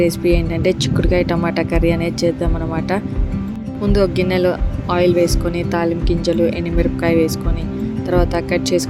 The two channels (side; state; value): both; identical; correlation 1.00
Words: రెసిపీ ఏంటంటే చిక్కుడుకాయ టమాటా కర్రీ అనేది చేద్దామన్నమాట. ముందు ఒక గిన్నెలో ఆయిల్ వేసుకొని తాలింపు గింజలు, ఎండుమిరపకాయ వేసుకొని తర్వాత కట్